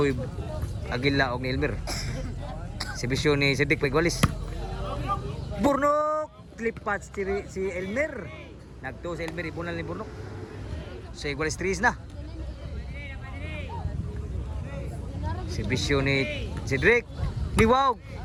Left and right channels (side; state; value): both; identical; correlation 1.00